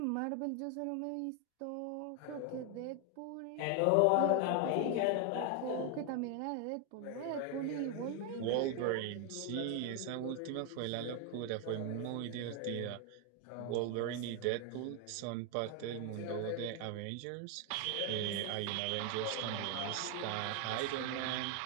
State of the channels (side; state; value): both; different; correlation 0.01